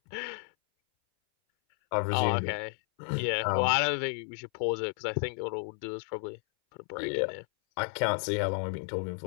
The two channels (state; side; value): silent; right; 57 dB below the other